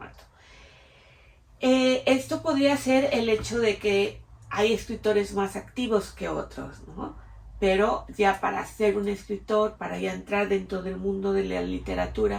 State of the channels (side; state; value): both; identical; correlation 1.00